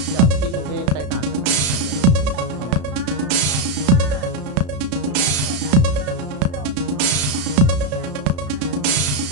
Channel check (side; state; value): left; late; 33 ms